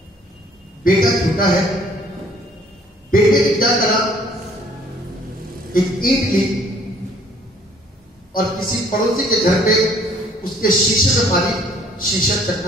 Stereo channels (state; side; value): normal; both; correlation 0.59